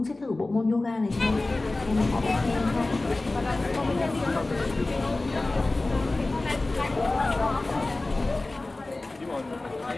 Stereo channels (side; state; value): right; quieter; 3.0 dB